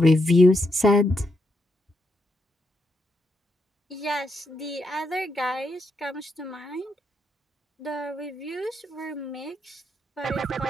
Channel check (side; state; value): both; normal; correlation 0.81